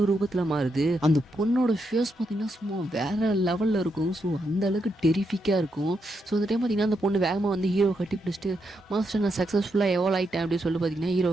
ரூபத்தில் மாறுது. அந்த பொண்ணோட ஃபேஸ் பார்த்தீங்கன்னா சும்மா வேறு லெவலில் இருக்கும். ஸோ அந்த அளவுக்கு டெரிஃபிக்காக இருக்கும். ஸோ அந்த டைம் பார்த்தீங்கன்னா அந்த பொண்ணு வேகமாக வந்து ஹீரோவை கட்டி பிடிச்சிட்டு மாஸ்டர் நான் சக்ஸஸ்ஃபுல்லாக எவால்வ் ஆகிட்டேன் அப்படின்னு சொல்லி பார்த்தீங்கன்னா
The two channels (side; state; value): both; normal; correlation 0.82